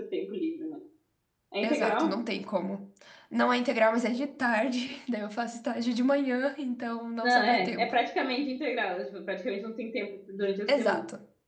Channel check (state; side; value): identical; both; correlation 1.00